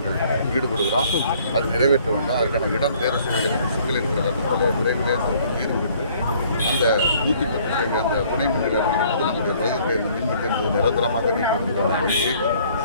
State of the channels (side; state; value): both; inverted; correlation -0.59